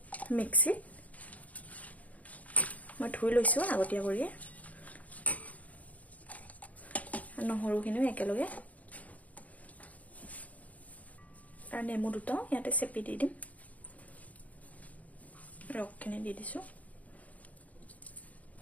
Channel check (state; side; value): late; right; 0.072 ms